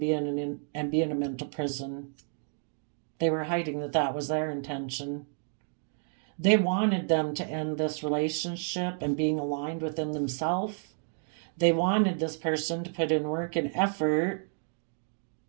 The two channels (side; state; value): left; silent; 57 dB below the other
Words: in a mental prison. They were hiding that was their intention. They wanted them to end this relationship and being aligned within themselves. They wanted this person to put in work and effort